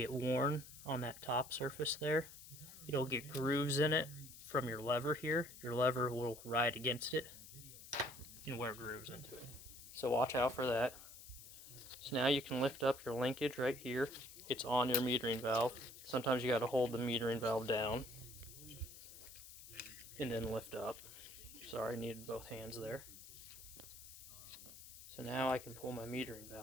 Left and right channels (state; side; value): noise; left; hiss, 15 dB below the sound